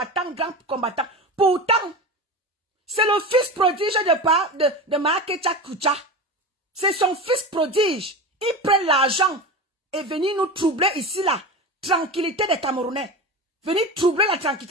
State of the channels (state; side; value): normal; both; correlation 0.27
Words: grand combattant. Pourtant, c'est le fils prodige de Mahakecha Kucha. C'est son fils prodige. Il prend l'argent et venir nous troubler ici là. Tranquillité des Camerounais. Venir troubler la